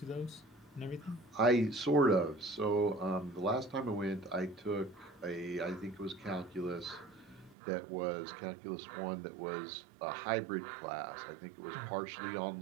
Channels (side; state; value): left; drops out; at 7.6 s